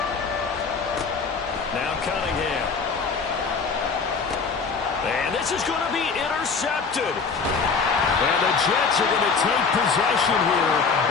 Now Cunningham. And this is going to be intercepted. And the Jets are going to take possession here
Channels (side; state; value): right; quieter; 5.1 dB